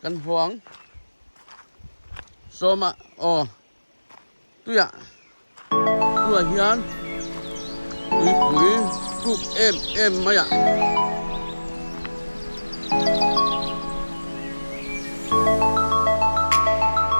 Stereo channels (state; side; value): inverted; both; correlation -1.00